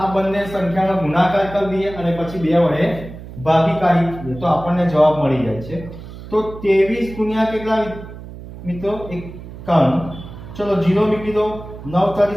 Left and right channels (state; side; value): noise; right; hum, 14 dB below the sound